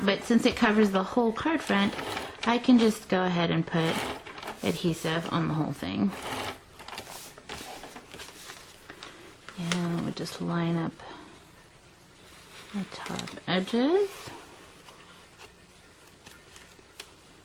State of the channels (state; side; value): identical; both; correlation 1.00